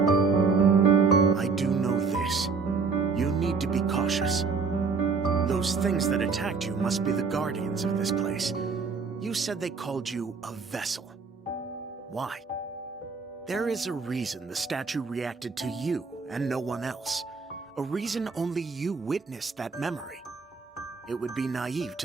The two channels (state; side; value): quieter; left; 5.0 dB